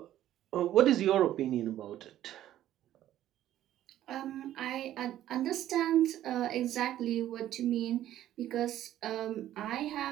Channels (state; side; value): quieter; left; 12.6 dB